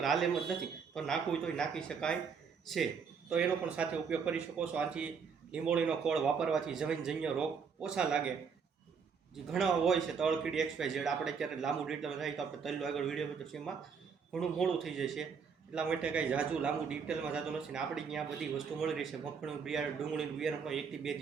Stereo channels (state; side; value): quieter; left; 6.1 dB